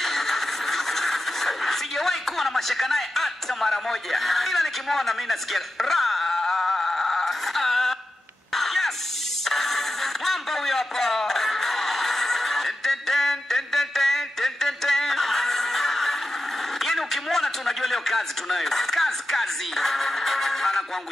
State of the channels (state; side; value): normal; both; correlation 0.91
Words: Sijawahi kuwa na mashaka naye hata mara moja. Ila nikimwona mimi nasikia yes. Mwamba huyo hapa. Yaani ukimwona tunajua leo kazi tunayo. Kazi.